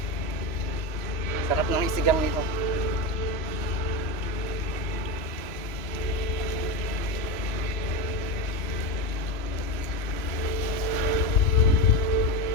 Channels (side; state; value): right; late; 3.0 ms